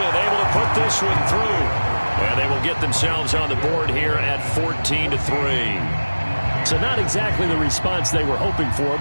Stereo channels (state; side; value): inverted; both; correlation -1.00